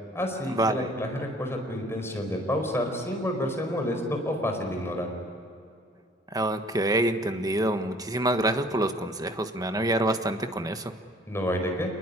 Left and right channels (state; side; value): normal; both; correlation 0.54